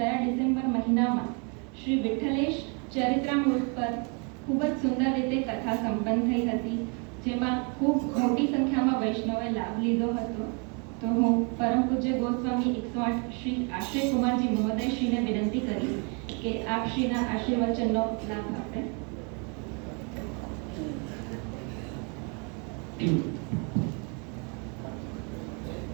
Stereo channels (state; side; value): quieter; left; 35.2 dB